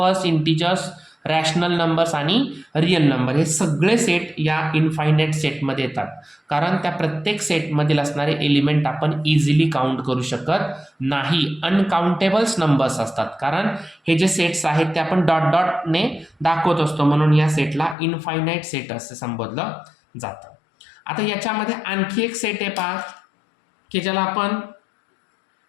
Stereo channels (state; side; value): drops out; right; at 17.9 s